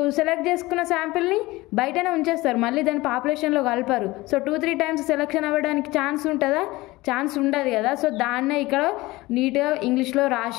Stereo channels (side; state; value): right; quieter; 20.1 dB